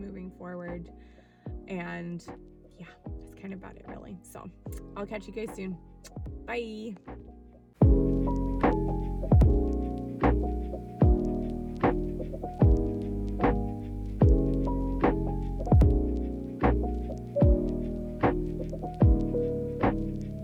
forward. And yeah, that's kind of about it really. So I'll catch you guys soon. Bye.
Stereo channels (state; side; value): identical; both; correlation 1.00